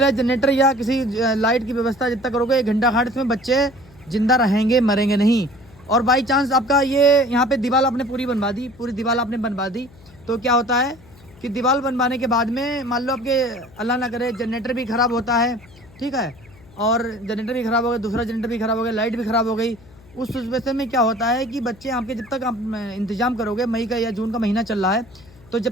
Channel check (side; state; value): left; noise; hum, 24 dB below the sound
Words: जनरेटर या किसी लाइट की व्यवस्था जब तक करोगे, 1 घंटा खाड़ इसमें बच्चे ज़िंदा रहेंगे, मरेंगे नहीं। और बाई चांस आपका ये यहाँ पे दीवार आपने पूरी दीवार आपने बनवा दी, तो क्या होता है कि दीवार बनवाने के बाद में मान लो आपके अल्लाह ना करे जनरेटर भी ख़राब होता है, ठीक है, और जनरेटर भी ख़राब हो गया, दूसरा जनरेटर भी ख़राब हो गया, लाइट भी ख़राब हो गई। उस सिचुएशन में क्या होता है कि बच्चे आपके जब तक आप इंतज़ाम करोगे, मई का या जून का महीना चल रहा है, तो